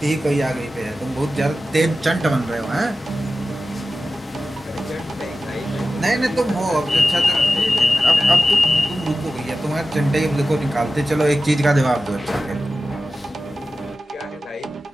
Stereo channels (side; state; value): both; normal; correlation 0.93